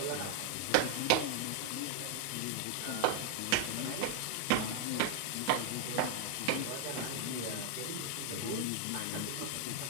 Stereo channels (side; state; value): both; different; correlation 0.00